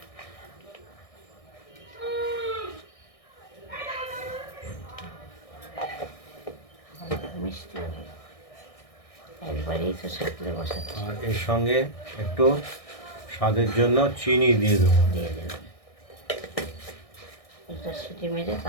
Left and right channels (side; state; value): right; late; 1.6 ms